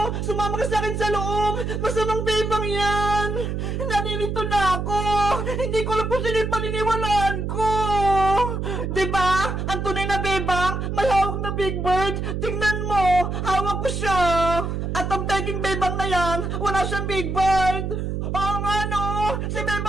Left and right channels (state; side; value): noise; right; hum, 3 dB below the sound